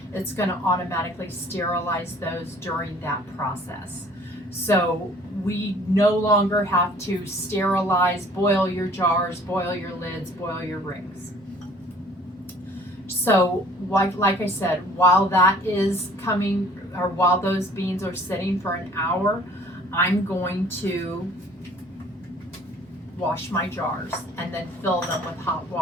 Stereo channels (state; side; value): normal; both; correlation 0.53